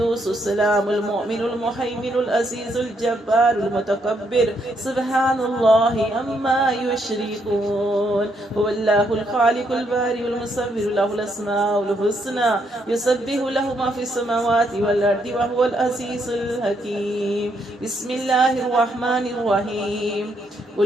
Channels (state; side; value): normal; both; correlation 0.75